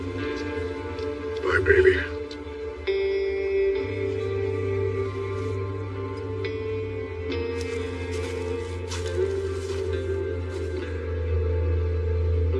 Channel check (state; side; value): identical; both; correlation 1.00